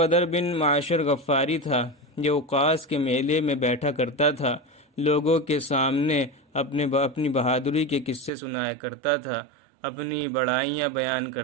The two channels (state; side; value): drops out; left; at 8.3 s